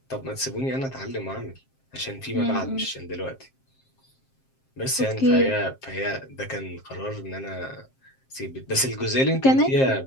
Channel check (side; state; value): right; late; 7.5 ms